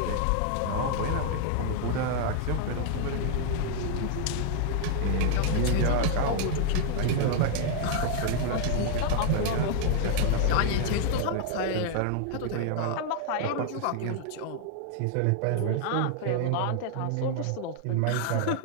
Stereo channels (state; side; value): different; both; correlation 0.00